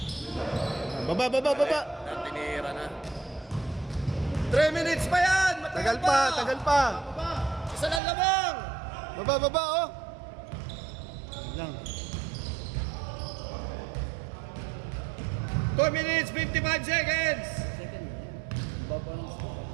Baba. Tinira na. 3 minutes pa yan! Tagal pa. Isa lang lamang! Baba, oh. Lang. 2 minutes, 55 seconds!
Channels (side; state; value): left; drops out; at 8.0 s